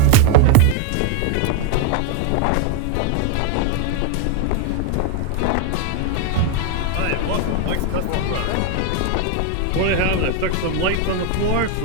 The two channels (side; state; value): both; different; correlation 0.01